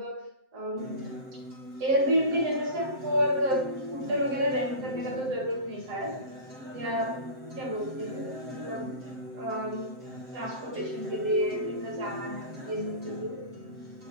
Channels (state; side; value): late; left; 7.7 ms